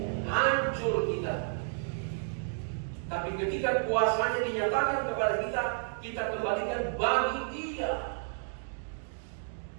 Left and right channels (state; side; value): silent; left; digital silence